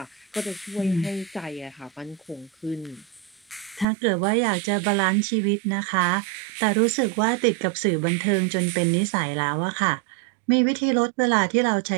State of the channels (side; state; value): left; drops out; at 3.9 s